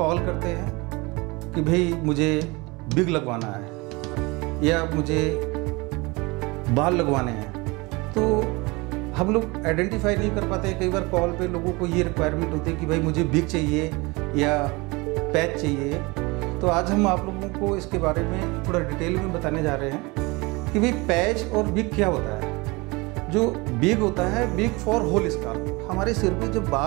करते हैं कि भाई मुझे विग लगवाना है या मुझे बाल लगवाने हैं। तो हम लोग आइडेंटिफाई नहीं कर पाते। कई बार कॉल पे लोगों को ये रिक्वायरमेंट होती है कि भाई मुझे विग चाहिए या पैच चाहिए। तो आज हम आप लोगों को इसके बारे में थोड़ा डिटेल में बताने जा रहे हैं कि भाई पैच और विग क्या होता है। जो विग होता है, विग फॉर होल स्काल्प। हमारे सिर पे जब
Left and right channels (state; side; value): quieter; left; 25.1 dB